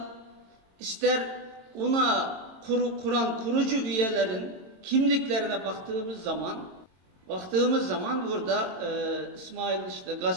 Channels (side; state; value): left; late; 22 ms